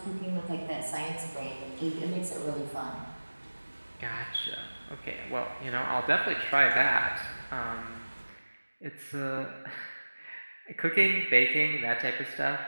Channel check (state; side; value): inverted; both; correlation -1.00